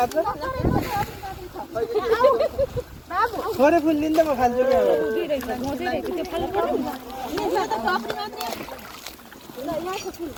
थोरै फुल दिन्छ म खान्छु कि अब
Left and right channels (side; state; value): both; identical; correlation 1.00